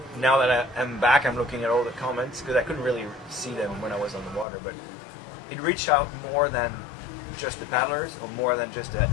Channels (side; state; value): right; drops out; at 4.5 s